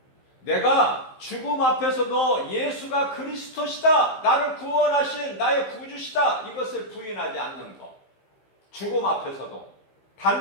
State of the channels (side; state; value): right; late; 15 ms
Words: 내가 죽음 앞에서도 예수가 그리스도시다. 나를 구원하신 나의 구주시다. 이것을 부인하지 않는 것. 죽음 앞에서도